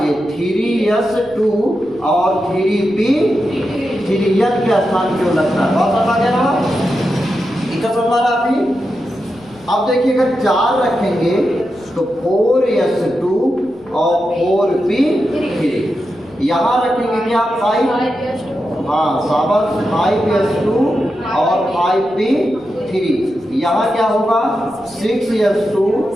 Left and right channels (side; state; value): left; noise; rumble, 29 dB below the sound